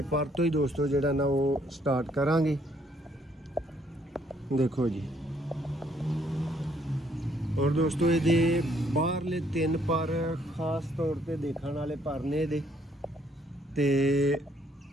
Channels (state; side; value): normal; both; correlation 0.67